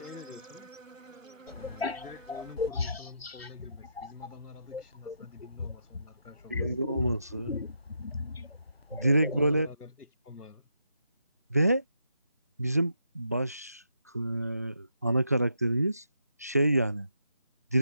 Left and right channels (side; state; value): both; inverted; correlation -0.79